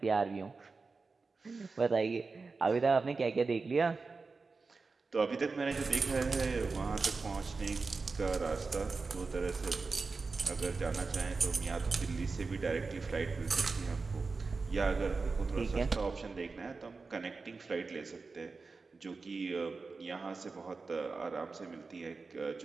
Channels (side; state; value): left; quieter; 4.2 dB